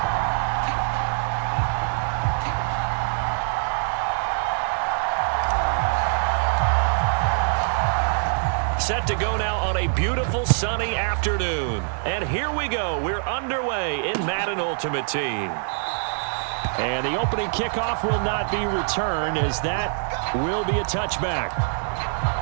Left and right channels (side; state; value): left; silent; digital silence